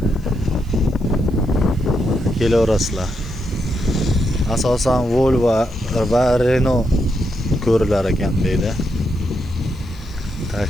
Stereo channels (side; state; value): left; noise; hiss, 29 dB below the sound